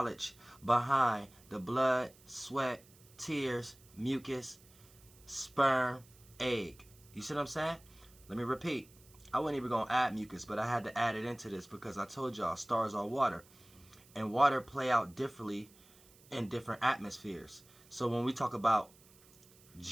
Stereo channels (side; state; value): right; noise; hiss, 26 dB below the sound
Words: behind the blood, sweat, tears, mucus, sperm, egg. You see what I'm saying? Let me repeat. I wasn't even going to add mucus, but I had to add it into this because I told y'all stars are water. And water play out differently in different atmospheres. So when we talk about